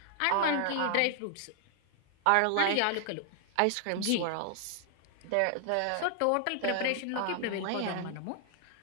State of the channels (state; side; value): different; both; correlation 0.00